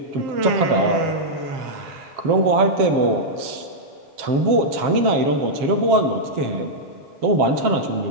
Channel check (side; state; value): left; late; 7.4 ms